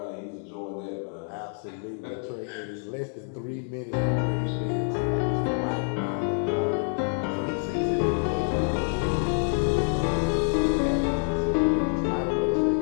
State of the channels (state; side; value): silent; right; 60 dB below the other